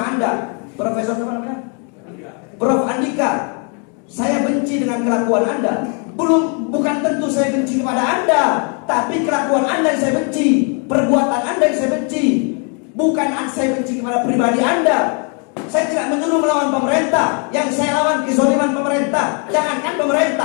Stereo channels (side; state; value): right; quieter; 38.7 dB